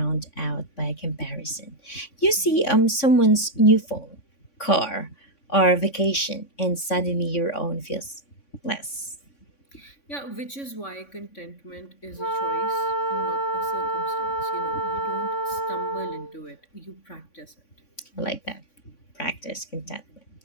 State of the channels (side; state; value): right; late; 3.5 ms